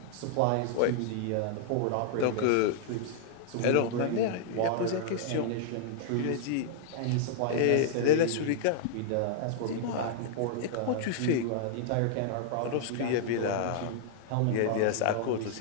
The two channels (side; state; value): both; different; correlation -0.01